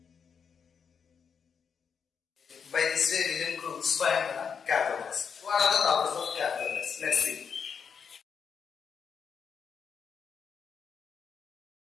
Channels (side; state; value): right; quieter; 6.6 dB